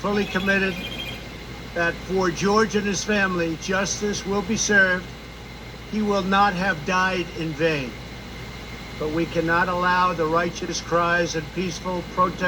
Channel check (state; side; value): identical; both; correlation 1.00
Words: committed that for George and his family, justice will be served. He will not have died in vain. But we cannot allow the righteous cries and peaceful